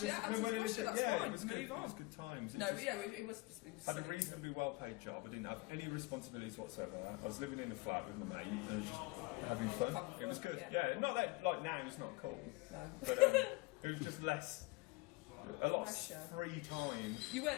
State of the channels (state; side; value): quieter; right; 24.1 dB